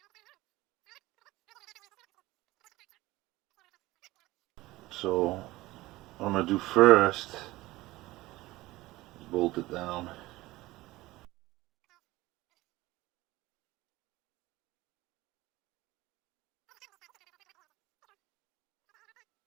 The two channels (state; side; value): quieter; left; 18.8 dB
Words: So what I'm going to do first is bolt it down.